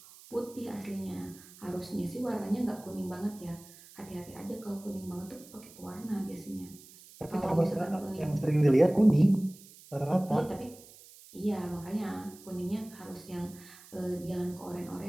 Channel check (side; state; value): right; noise; hiss, 21 dB below the sound